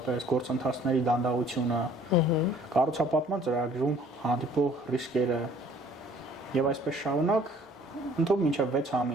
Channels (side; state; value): both; normal; correlation 0.55